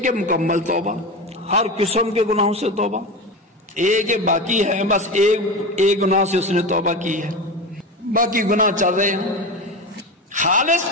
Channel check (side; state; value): both; normal; correlation 0.24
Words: مکمل توبہ، ہر قسم کے گناہوں سے توبہ، ایک ہے باقی ہے بس ایک گناہ سے اس نے توبہ کی ہے، باقی گناہ چل رہے ہیں۔ خالص